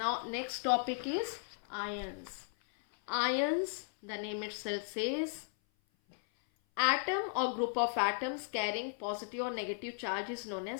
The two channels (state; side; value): silent; right; 54 dB below the other